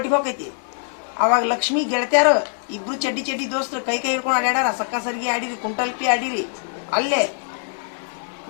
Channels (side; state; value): right; silent; digital silence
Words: ಹೋಗೈತಿ. ಅವಾಗ ಲಕ್ಷ್ಮಿ ಗೆಳತ್ಯಾರು ಇಬ್ರು ಚಡ್ಡಿ ದೋಸ್ತರು ಕೈ ಹಿಡ್ಕೊಂಡು ಆಡ್ಯಾರ. ಸಕ್ಕ ಸರಿಗೆ ಆಡಿರಿ, ಕುಂಟಲ್ಪಿ ಆಡಿರಿ. ಅಲ್ಲೇ